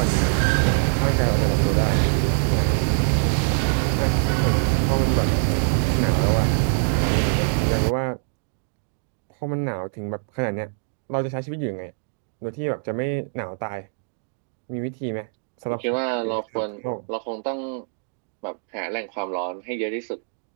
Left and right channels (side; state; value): left; silent; digital silence